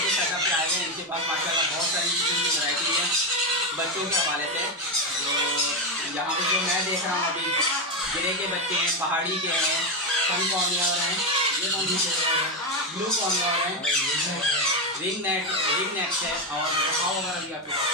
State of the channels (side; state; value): both; normal; correlation 0.10